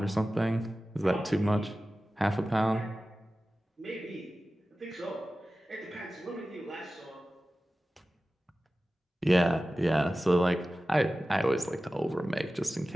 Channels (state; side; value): normal; both; correlation 0.95